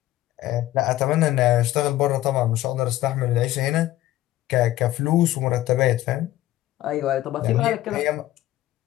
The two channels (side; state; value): right; quieter; 15.1 dB